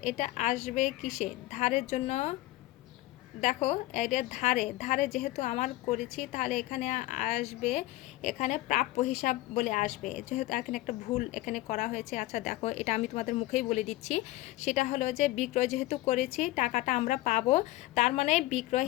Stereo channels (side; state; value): right; quieter; 17.7 dB